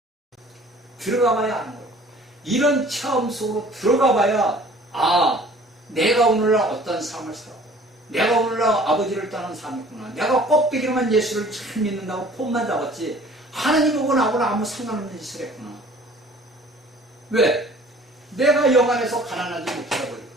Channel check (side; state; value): both; normal; correlation 0.51